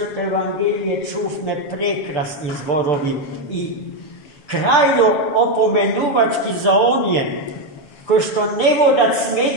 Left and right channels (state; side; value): late; right; 6.9 ms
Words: evangelije čufme prekrasni zborovi i krajno opomenuvački za onje ko što ne voda